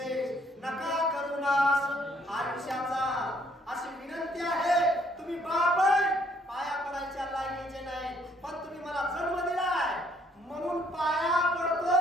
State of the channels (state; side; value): normal; both; correlation 0.66